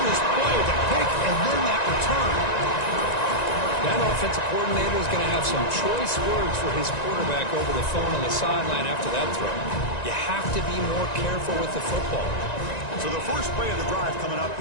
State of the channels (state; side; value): late; right; 1.9 ms